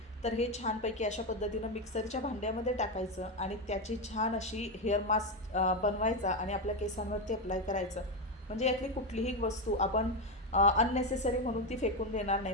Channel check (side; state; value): both; normal; correlation 0.10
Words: तर हे छानपैकी अशा पद्धतीनं मिक्सरच्या भांड्यामध्ये टाकायचं आणि त्याची छान अशी हेअर मास्क बनवायचा आणि आपल्या केसांवरती अप्लाय करायचं. म्हणजे यातली कुठलीही वस्तू आपण अननेसेसरी म्हणून ती फेकून देणार